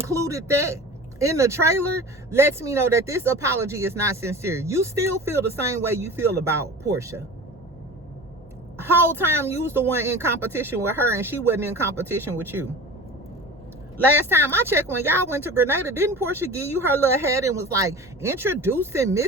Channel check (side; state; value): both; normal; correlation 0.36